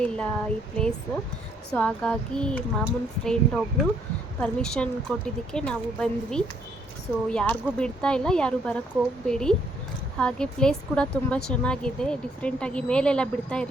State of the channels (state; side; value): normal; both; correlation 0.69